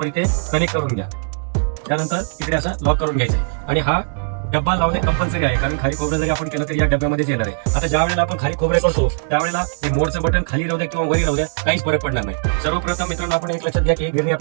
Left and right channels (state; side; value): silent; left; digital silence